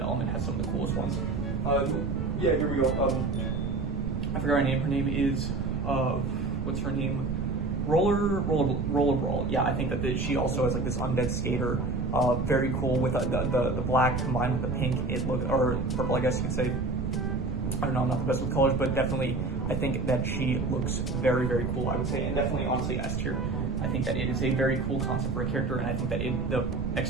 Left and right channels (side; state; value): right; noise; rumble, 3 dB below the sound